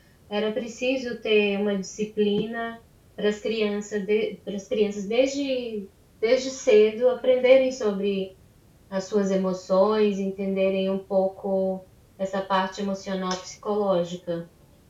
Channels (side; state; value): both; identical; correlation 1.00